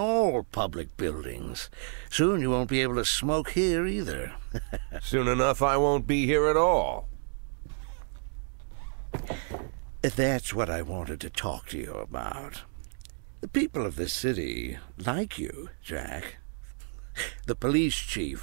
public buildings. Soon you won't be able to smoke here either. Soon enough I won't be here at all. That's what I wanted to talk to you about. The people of this city like you, Jack. The police chief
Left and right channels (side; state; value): left; silent; digital silence